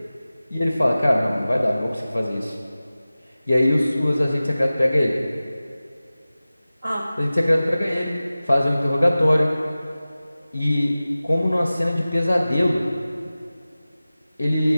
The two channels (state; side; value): inverted; both; correlation -0.97